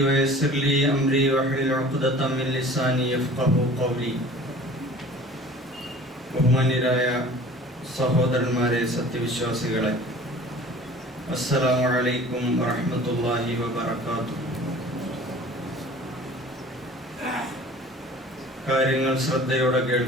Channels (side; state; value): both; normal; correlation 0.45